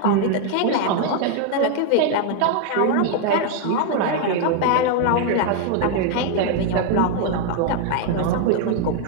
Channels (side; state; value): both; different; correlation 0.00